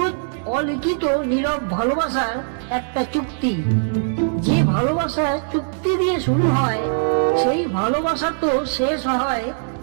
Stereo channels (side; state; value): left; silent; digital silence